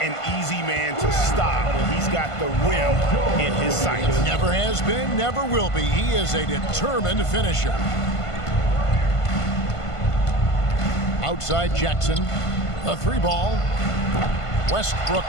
an easy man to stop when he's got the rim in his sights. Never has been, never will be. He is a determined finisher. Outside Jackson, the 3-ball. Westbrook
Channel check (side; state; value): right; late; 1.5 ms